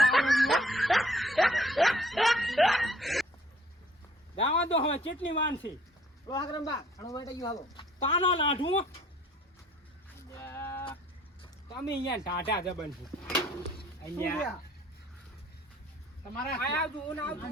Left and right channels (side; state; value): both; normal; correlation 0.58